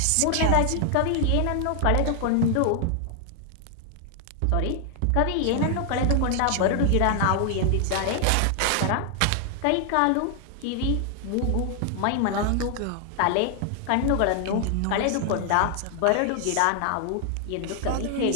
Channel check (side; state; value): both; different; correlation 0.00